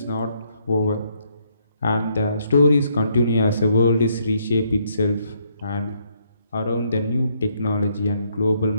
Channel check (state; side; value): inverted; both; correlation -0.72